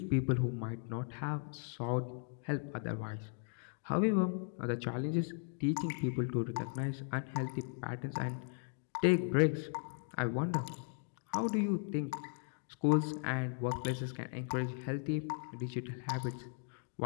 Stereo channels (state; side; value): silent; right; 53 dB below the other